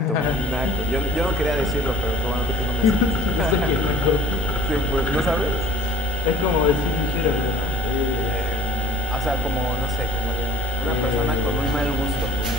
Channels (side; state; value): both; normal; correlation 0.48